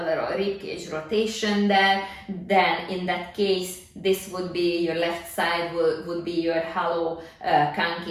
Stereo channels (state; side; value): identical; both; correlation 1.00